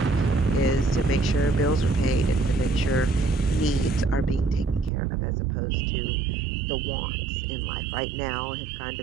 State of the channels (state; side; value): drops out; left; at 4.9 s